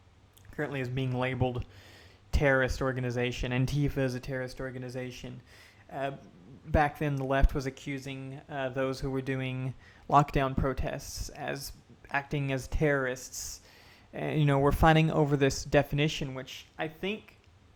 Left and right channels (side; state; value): both; identical; correlation 1.00